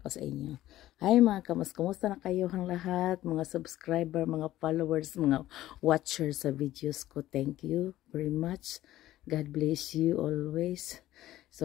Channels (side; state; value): right; quieter; 14.6 dB